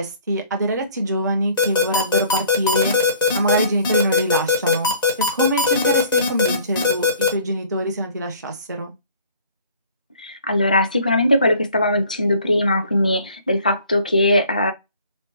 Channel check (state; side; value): inverted; both; correlation -0.53